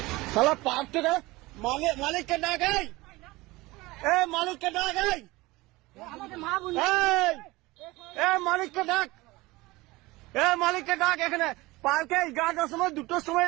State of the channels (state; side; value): quieter; left; 20.9 dB